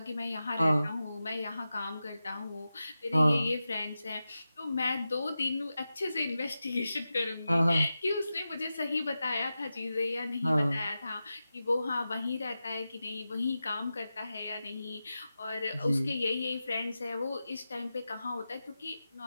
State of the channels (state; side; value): inverted; both; correlation -0.93